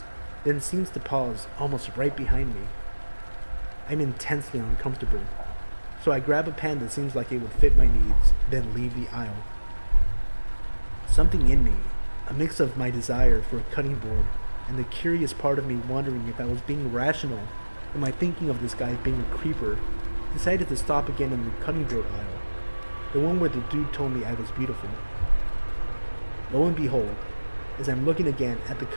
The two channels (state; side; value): inverted; both; correlation -1.00